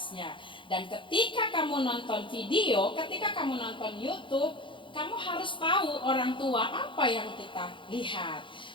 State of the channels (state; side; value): late; right; 0.24 ms